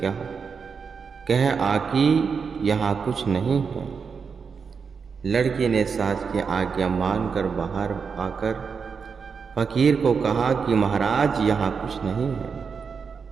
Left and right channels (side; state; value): left; quieter; 5.8 dB